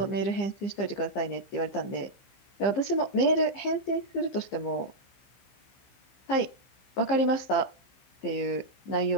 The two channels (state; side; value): late; right; 15 ms